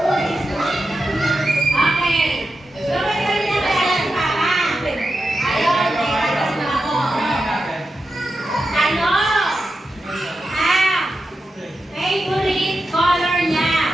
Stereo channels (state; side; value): normal; both; correlation 0.89